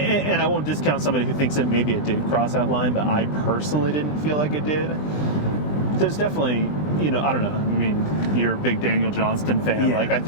I won't discount somebody who thinks that maybe it did cross that line, but I personally didn't feel like it did. There's definitely, I don't know. I mean, you're a big Daniel Johnston fan. Yeah. Like I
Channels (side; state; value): right; late; 20 ms